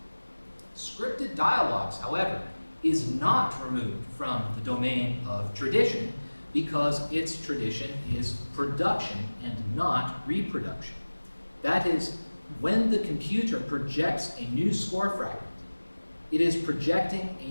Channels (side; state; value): both; inverted; correlation -1.00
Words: Scripted dialogues, however, is not removed from the domain of tradition because its tradition is production and not reproduction. That is, when the computer projects a new score fragment, it is projecting a